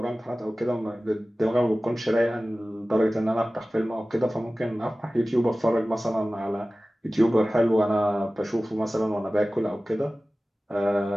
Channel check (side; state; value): both; normal; correlation 0.97